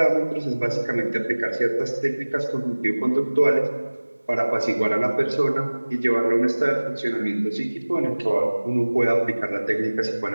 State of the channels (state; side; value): inverted; both; correlation -1.00